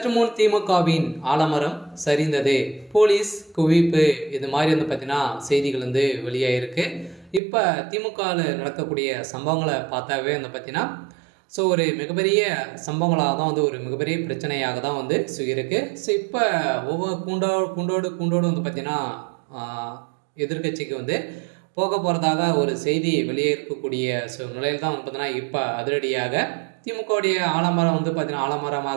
முன் திமுகவின் ஆலமரம் சரிந்தது, போலீஸ் குவிப்பு, இது மாதிரி பார்த்தீங்கன்னா செய்திகள் வெளியாகிருக்கு. இப்போ திமுகவில் நடக்கக்கூடிய சம்பவங்களை பார்த்தாவே பார்த்தீங்கன்னா ஒரு மிகப்பெரிய சம்பவங்களாக தான் ஒரு மிகப்பெரிய பிரச்சனையாக தான் இருக்கு. இப்போ ஒவ்வொரு கூண்டோடு பார்த்தீங்கன்னா எதிர்க்கட்சிக்கு போக போகிறதாக ஒரு செய்தி வெளியே இருக்கக்கூடிய நிலையில் தான் பார்த்தீங்கன்னா இப்போ அதிரடியாக திமுகவுடைய ஆலமரம் பார்த்தீங்கன்னா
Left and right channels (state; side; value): drops out; left; at 7.4 s